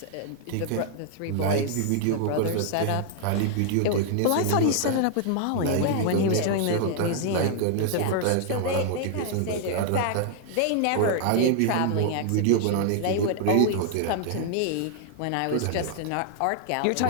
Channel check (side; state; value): both; different; correlation -0.01